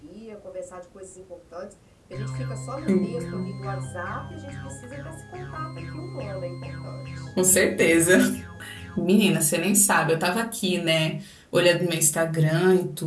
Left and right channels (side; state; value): both; identical; correlation 1.00